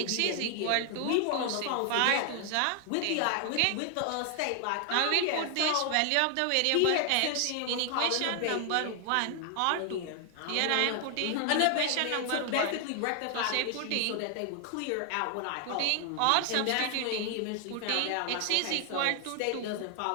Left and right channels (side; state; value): both; different; correlation 0.00